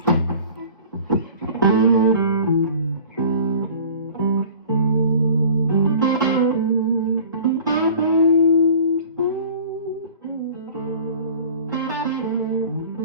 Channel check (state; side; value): inverted; both; correlation -0.45